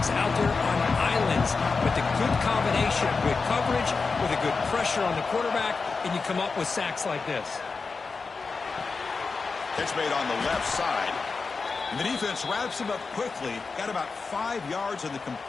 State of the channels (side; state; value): right; quieter; 4.5 dB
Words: out there on islands, but the good combination of good coverage with a good pressure on the quarterback, and you come up with sacks like this. Catch made on the left side. And the defense wraps him up quickly. Got about 5 yards on the